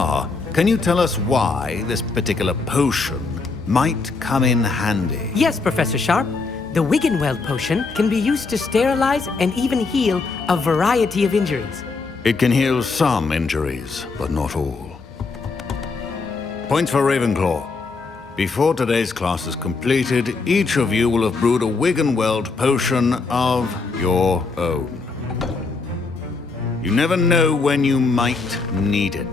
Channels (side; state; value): right; quieter; 4.2 dB